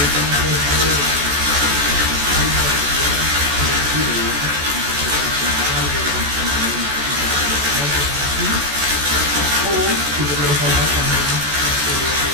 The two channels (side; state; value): left; late; 14 ms